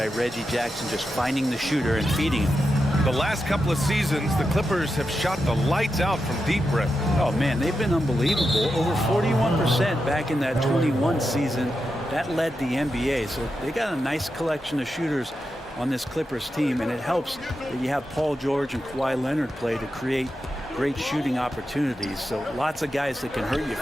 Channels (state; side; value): normal; both; correlation 0.88